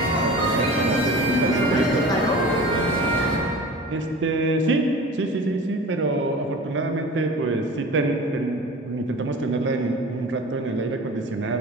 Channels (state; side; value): normal; both; correlation 0.37